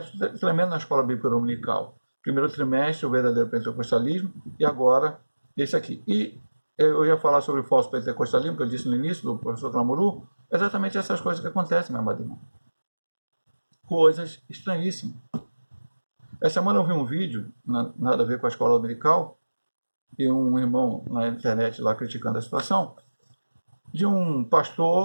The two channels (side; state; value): both; inverted; correlation -1.00